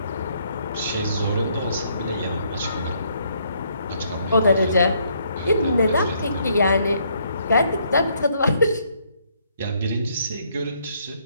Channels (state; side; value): inverted; both; correlation -0.69